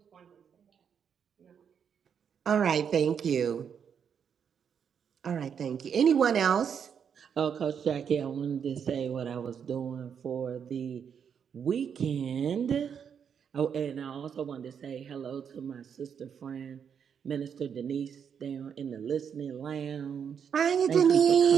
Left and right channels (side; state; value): left; quieter; 7.5 dB